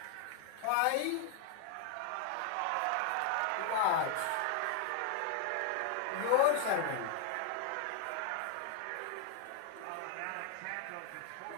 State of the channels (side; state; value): both; different; correlation 0.00